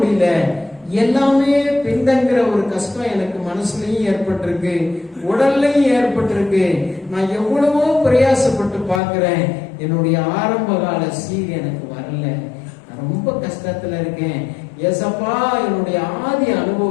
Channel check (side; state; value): right; drops out; at 9.0 s